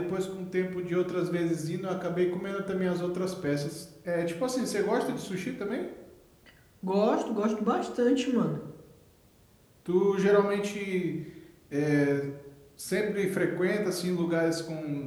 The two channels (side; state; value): both; identical; correlation 1.00